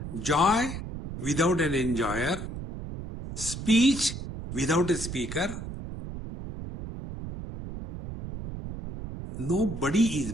joy without an enjoyer, speech without a speaker. Nobody is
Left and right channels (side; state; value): right; noise; rumble, 8 dB below the sound